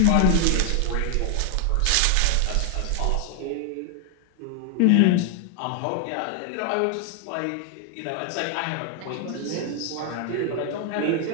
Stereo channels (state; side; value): different; both; correlation 0.00